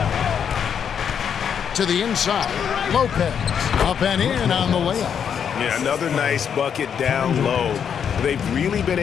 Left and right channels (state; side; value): quieter; right; 7.8 dB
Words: To the inside. Lopez. Up and in on the layup. Yeah, another nice bucket down low. They've really been